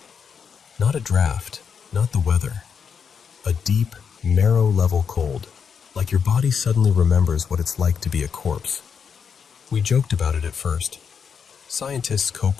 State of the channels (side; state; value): right; quieter; 6.6 dB